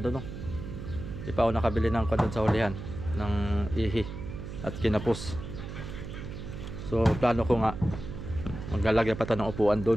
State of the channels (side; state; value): right; noise; hum, 9 dB below the sound